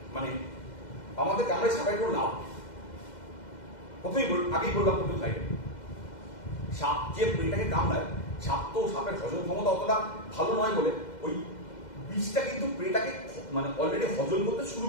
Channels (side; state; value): right; late; 2.0 ms